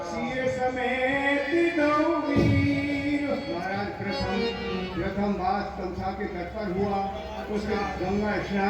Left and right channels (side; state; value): both; identical; correlation 1.00